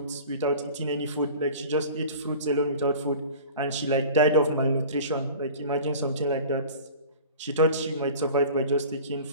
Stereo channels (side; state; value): both; inverted; correlation -0.41